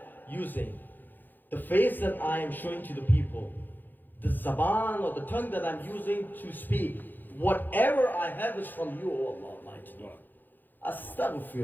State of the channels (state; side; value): late; right; 0.089 ms